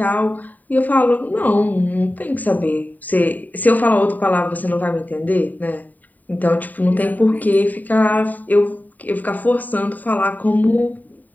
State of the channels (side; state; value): right; late; 0.083 ms